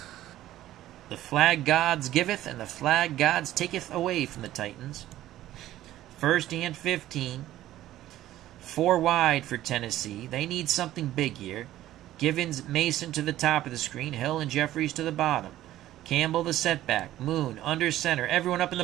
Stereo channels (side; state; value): left; quieter; 14.0 dB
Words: The flag gods giveth and the flag gods taketh away from the Titans. 1st and 15. 4 wide for Tennessee. They need something big here. Givens, Mason to the top of the screen. Hill and Jeffries to the bottom. Campbell the setback. Moon under center. Everyone up in the